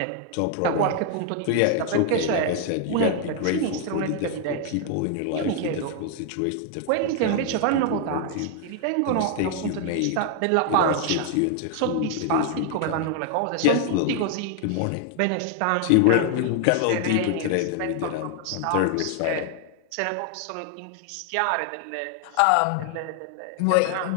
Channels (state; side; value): different; both; correlation 0.00